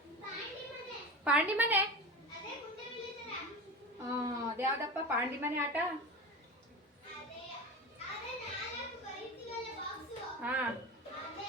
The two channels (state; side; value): normal; both; correlation 0.28